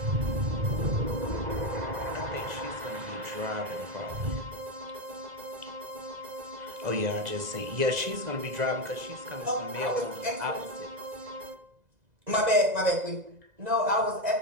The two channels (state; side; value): late; left; 2.0 ms